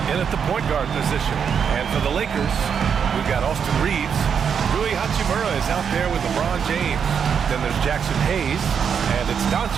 in at the point guard position. And for the Lakers, we've got Austin Reeves. Rui Hachimura is out there with LeBron James. Then there's Jackson Hayes. And it's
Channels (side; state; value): left; quieter; 7.1 dB